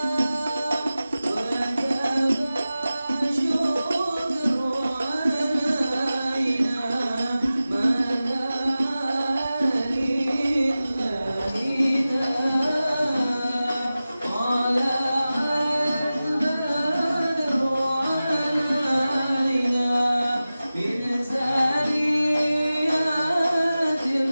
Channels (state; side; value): inverted; both; correlation -0.95